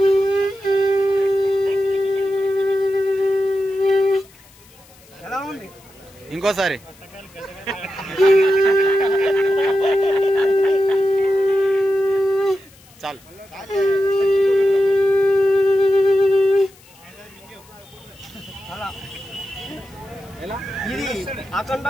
ఎలా ఉంది? ఇంకోసారి చాలు. ఇది అఖండ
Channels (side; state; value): left; noise; hiss, 26 dB below the sound